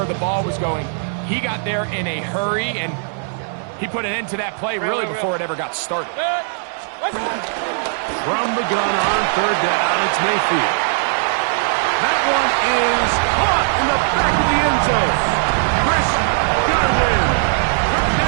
the ball was going, he got there in a hurry, and he put an end to that play really before it ever got started. From the gun on 3rd down, it's Mayfield. That one is caught in the back of the end zone. Chris Godwin.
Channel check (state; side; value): silent; left; digital silence